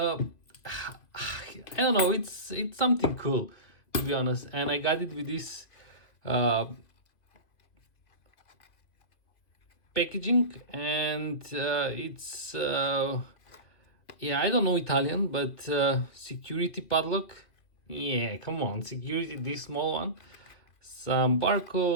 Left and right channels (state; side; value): late; right; 2.3 ms